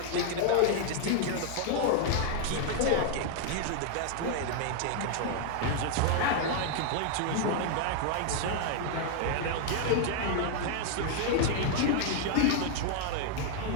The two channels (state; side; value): different; both; correlation 0.00